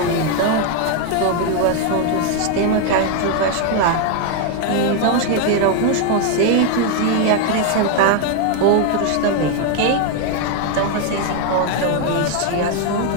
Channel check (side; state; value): both; different; correlation 0.01